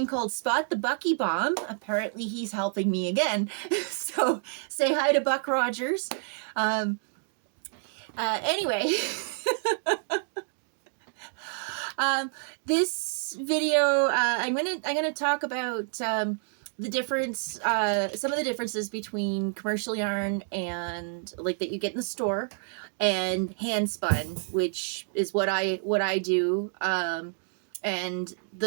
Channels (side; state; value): left; silent; 58 dB below the other